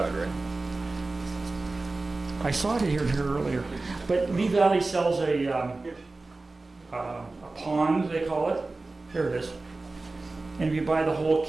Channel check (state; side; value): quieter; left; 3.4 dB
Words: right? I saw it here earlier, but Lee Valley sells a pond, they call it. Here it is. And if you buy the whole